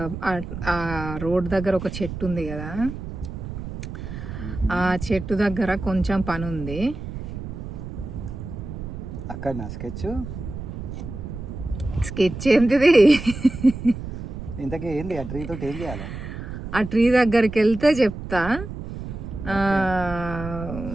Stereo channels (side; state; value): right; noise; rumble, 8 dB below the sound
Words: రోడ్ దగ్గర ఒక చెట్టు ఉంది కదా, ఆ చెట్టు దగ్గర కొంచెం పని ఉంది. అక్కడ నా స్కెచ్ ఏంటిది? ఇంతకీ ఏంది ఆ ట్రీ తోటి ఏం చేయాలి? ఆ ట్రీ దగ్గరికి వెళ్తే చెప్తా.